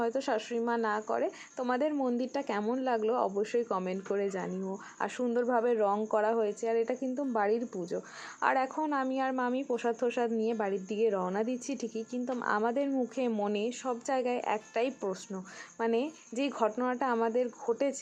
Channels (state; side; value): identical; both; correlation 1.00